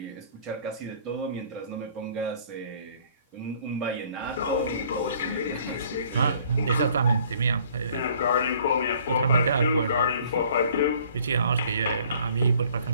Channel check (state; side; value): inverted; both; correlation -0.56